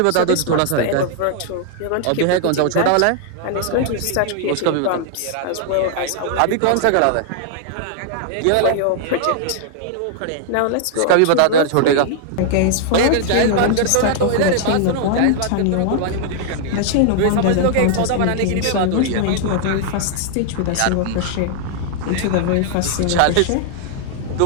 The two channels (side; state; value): both; different; correlation -0.01